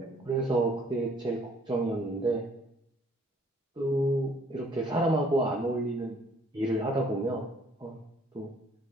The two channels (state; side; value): normal; both; correlation 0.60